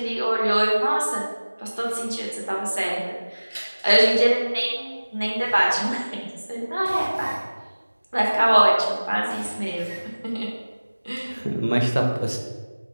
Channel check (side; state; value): both; inverted; correlation -1.00